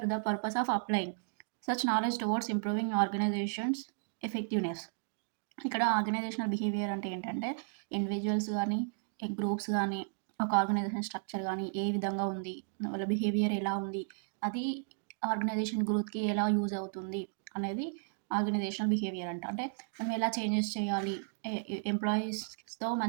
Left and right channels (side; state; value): left; silent; digital silence